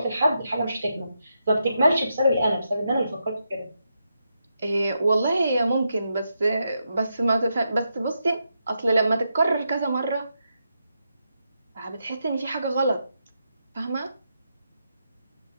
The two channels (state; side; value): inverted; both; correlation -0.83